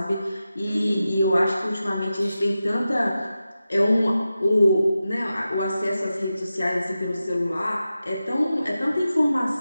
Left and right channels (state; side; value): inverted; both; correlation -0.92